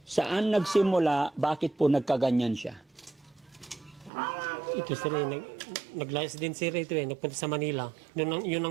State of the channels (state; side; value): drops out; left; at 4.1 s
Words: saan nagsimula, bakit po nagkaganyan siya? Ito, sir, naglayas din, sir, ito nagpunta sa Manila. Yun